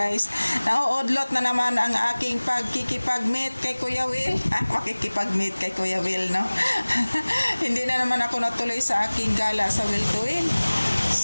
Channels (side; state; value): both; inverted; correlation -1.00